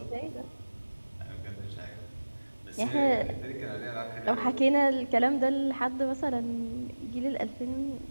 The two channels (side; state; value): both; inverted; correlation -1.00